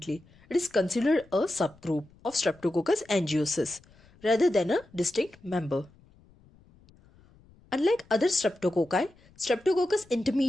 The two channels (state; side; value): noise; left; rumble, 28 dB below the sound